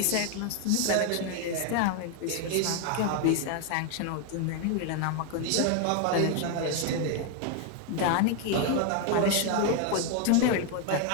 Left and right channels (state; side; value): different; both; correlation 0.01